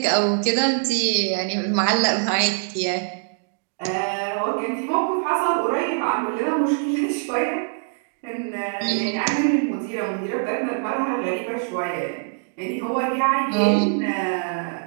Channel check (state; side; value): silent; left; digital silence